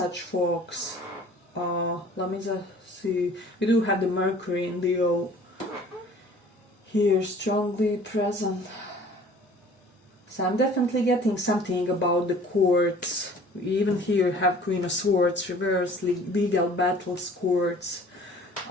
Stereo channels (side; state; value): both; normal; correlation 0.50